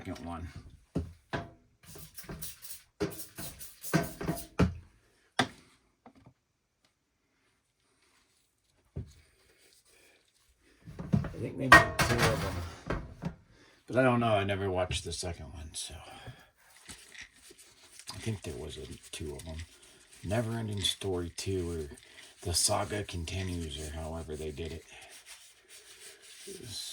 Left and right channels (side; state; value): both; identical; correlation 1.00